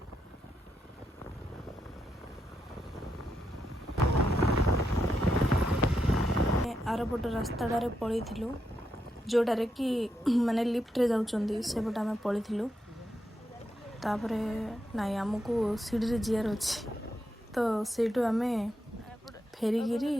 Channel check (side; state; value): both; normal; correlation 0.83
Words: आरपट रास्ताटारे पलू जोटारे कि माने लिफ्ट रे जाउचंदी सेपट आम पलू तापर नाई आमको सीढ़ी जीआर अच्छी तो सेठू आम फेरिकी